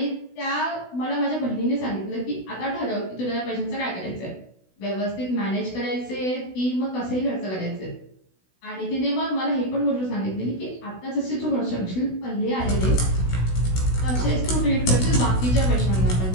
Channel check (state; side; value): late; right; 16 ms